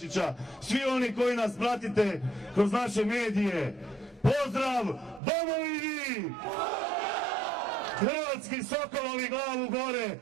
svi oni koji nas pratite kroz naše medije, pozdrav domovini! Hrvatski sokolovi glavu gore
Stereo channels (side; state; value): left; drops out; at 5.2 s